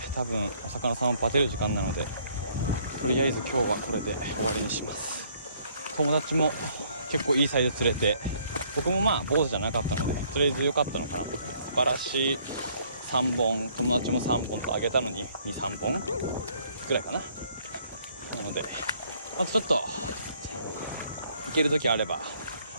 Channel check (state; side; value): inverted; both; correlation -0.63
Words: 多分お魚さんをバテる時間なので、とりあえず今日はこれで終わりにします。友達も結構いいサイズ釣れて、僕もまあ坊主じゃなかったのでとりあえず良かったのかなと。バラシ3本、友達も3本とあげたのに 2,3 本ぐらいかな。なのでまたちょっと行ける時あれば